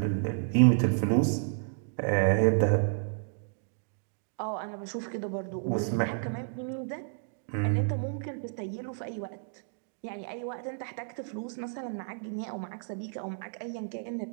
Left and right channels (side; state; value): left; silent; digital silence